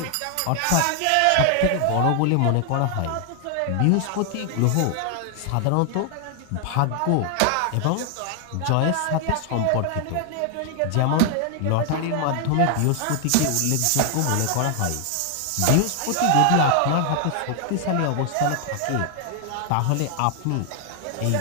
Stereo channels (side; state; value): both; different; correlation 0.00